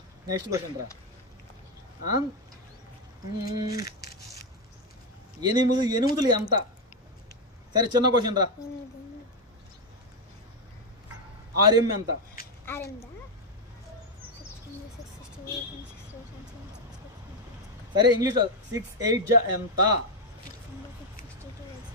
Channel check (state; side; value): normal; both; correlation 0.05